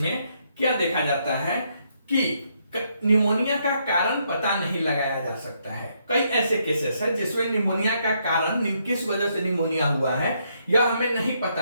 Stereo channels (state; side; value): inverted; both; correlation -0.75